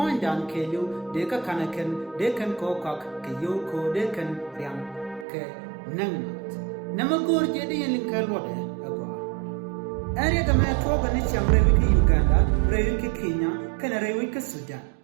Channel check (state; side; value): drops out; left; at 5.2 s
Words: down Kayu, Deka Kanakan, they can cock, Kayoko, they can Riam, K. Nangat. Namagur Jedi in Kalwade, Agua. Area the man talk on each Reviki Uganda, Reviki Kenya, Canarevika Sudan.